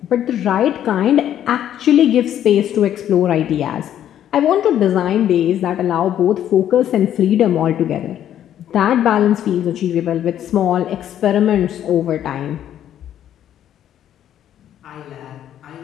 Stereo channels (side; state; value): right; quieter; 10.8 dB